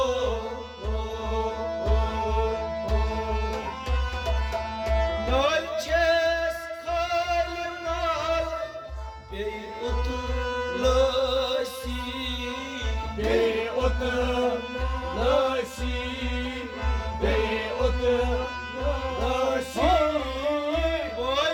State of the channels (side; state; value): both; identical; correlation 1.00